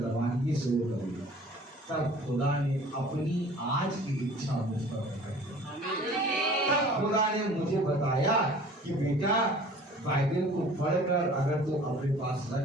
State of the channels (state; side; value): normal; both; correlation 0.48